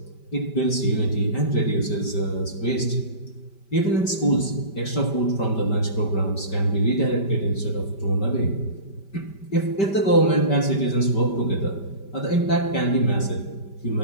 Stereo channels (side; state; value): right; late; 5.1 ms